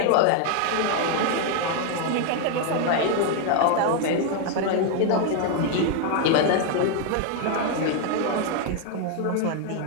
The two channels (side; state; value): both; different; correlation 0.01